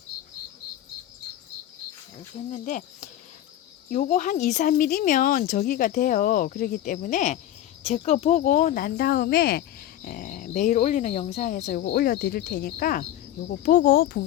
이렇게 했는데 요거 한 2, 3mm면 저기가 돼요. 그렇기 때문에 제 거 보고 난 다음에 매일 올리는 영상에서 요거 올려드릴 테니까 요거 보고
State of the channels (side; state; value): right; quieter; 12.6 dB